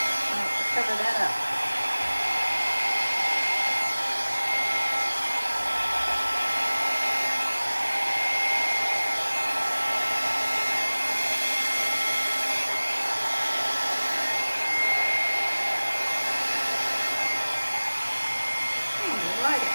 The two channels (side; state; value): both; inverted; correlation -1.00